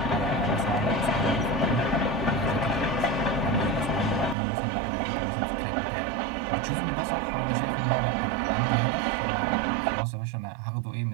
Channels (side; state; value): left; drops out; at 4.4 s